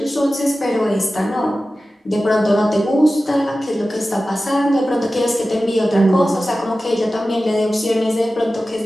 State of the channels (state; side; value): normal; both; correlation 0.95